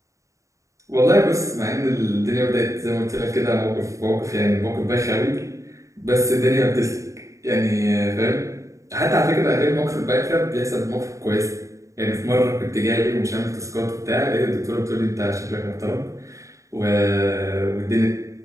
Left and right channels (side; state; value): left; late; 0.15 ms